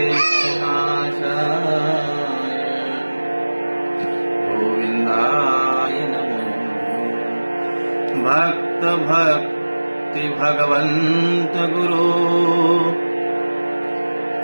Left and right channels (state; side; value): inverted; both; correlation -1.00